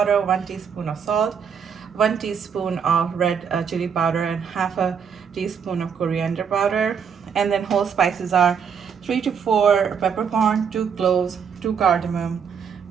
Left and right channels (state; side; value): quieter; left; 7.0 dB